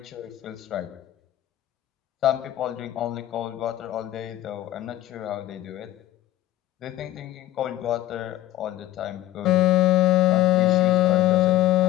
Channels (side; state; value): right; quieter; 15.1 dB